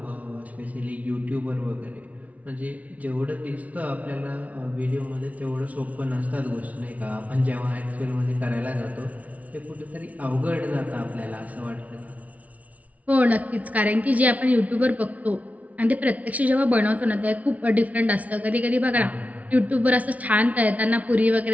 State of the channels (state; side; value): late; left; 0.070 ms